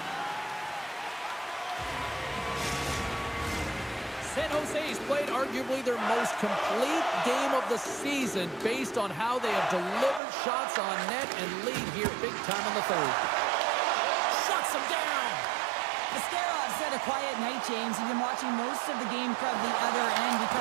San Jose's played arguably their most complete game of the season based on how they have delivered shots on net and lead here big time in the third. Shuts them down. Ascarov's had a quiet night, James. He's been watching most of the game from the other end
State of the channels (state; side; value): drops out; left; at 10.2 s